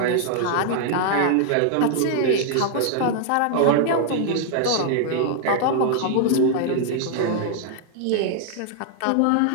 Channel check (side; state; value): both; different; correlation 0.00